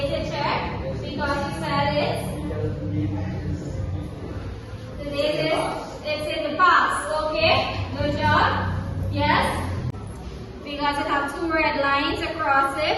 check because you said it. The date is it's in the past. Okay, good job. Yes? Because it has two red lines across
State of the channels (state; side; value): identical; both; correlation 1.00